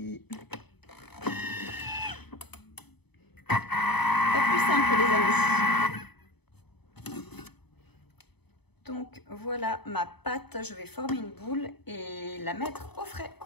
Pas plus simple les amis. Donc voilà ma pâte, je vais former une boule et la mettre au frais.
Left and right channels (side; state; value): right; late; 0.98 ms